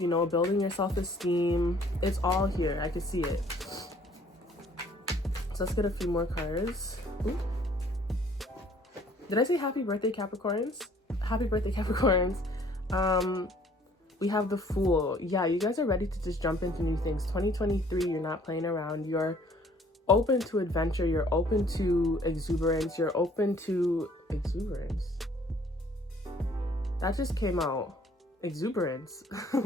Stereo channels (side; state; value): both; normal; correlation 0.58